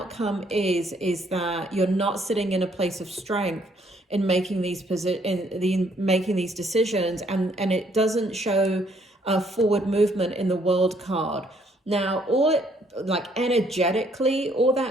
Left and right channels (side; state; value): both; normal; correlation 0.67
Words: is that you're not sitting in a place of strength in making these decisions, and it doesn't show a forward movement in the World card. Now, energetically, all